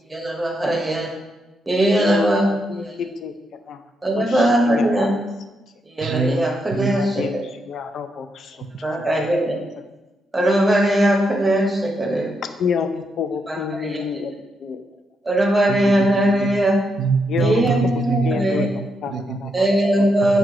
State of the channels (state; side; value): normal; both; correlation 0.81